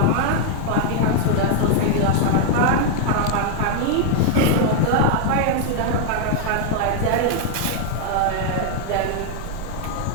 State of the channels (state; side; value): different; both; correlation 0.00